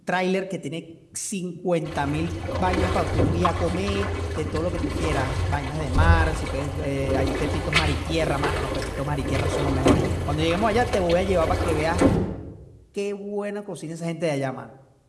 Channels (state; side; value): identical; both; correlation 1.00